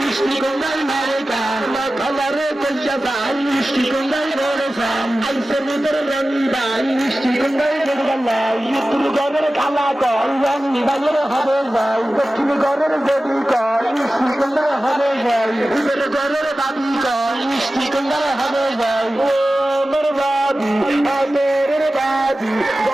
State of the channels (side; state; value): both; normal; correlation 0.95